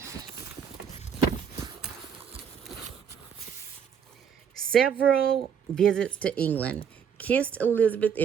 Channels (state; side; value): quieter; left; 7.6 dB